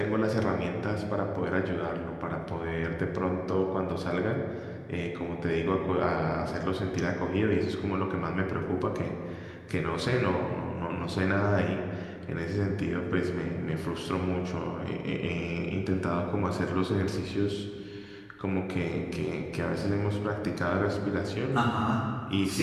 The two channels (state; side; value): identical; both; correlation 1.00